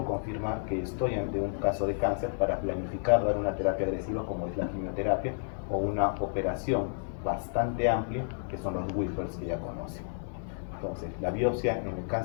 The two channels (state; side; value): silent; right; digital silence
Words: confirmar que estoy ante un caso de cáncer para planificar dar una terapia agresiva como es la quimioterapia o una operación bastante amplia que son los Whippers que ya conocen. Entonces la biopsia en el